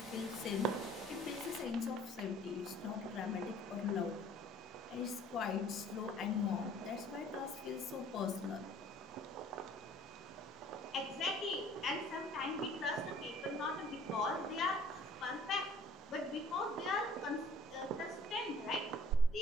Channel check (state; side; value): normal; both; correlation 0.53